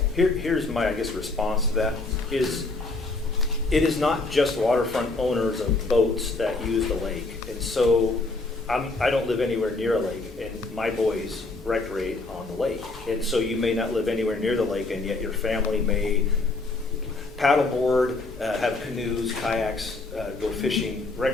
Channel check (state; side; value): quieter; right; 3.3 dB